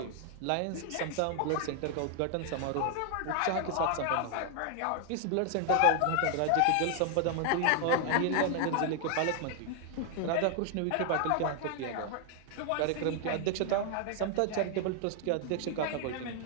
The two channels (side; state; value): both; different; correlation 0.00